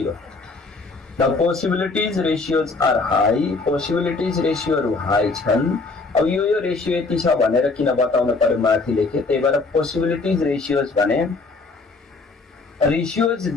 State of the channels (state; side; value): quieter; right; 3.8 dB